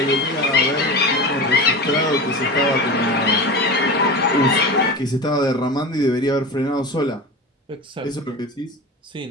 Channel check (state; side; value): normal; both; correlation 0.27